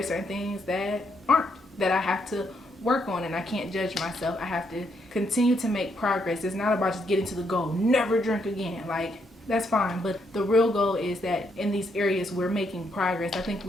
certain things that aren't, that I have to work on, and I can't judge myself. I have to continue to make progress. It's not about just getting to the goal, never drink again. Like, that's fine, but the real goal is that in these areas we're making progress. I think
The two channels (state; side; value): normal; both; correlation 0.76